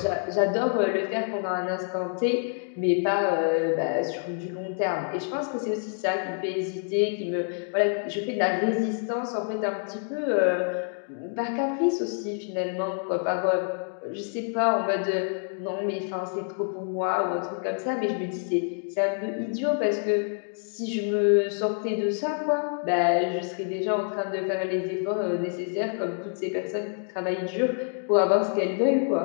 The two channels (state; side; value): silent; right; 59 dB below the other